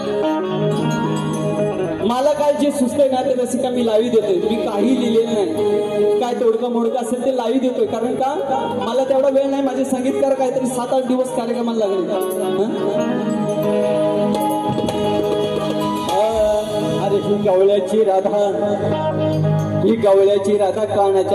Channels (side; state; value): both; identical; correlation 1.00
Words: मला काय जे सुचतंय ना ते रसिका मी लावी देतोय. मी काही लिहिलेलं नाही, काय तोडकं मोडकं असेल ते लावी देतोय. कारण का मला तेवढा वेळ नाही. माझे संगीतकार काहीतरी 7-8 दिवस कार्यक्रमाला लागले. अरे ही गवळ्याची राधा, ही गवळ्याची राधा